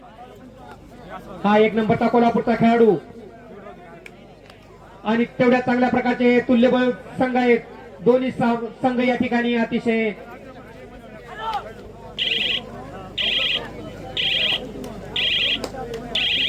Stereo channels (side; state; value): both; identical; correlation 1.00